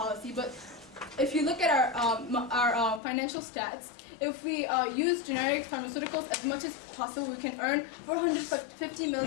But if you look at our financial stats, if we use generic pharmaceuticals as much as possible, we can earn $450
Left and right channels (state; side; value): drops out; right; at 3.0 s